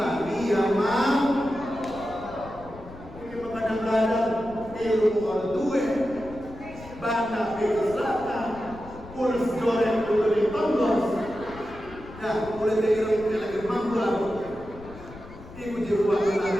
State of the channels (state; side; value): noise; left; rumble, 17 dB below the sound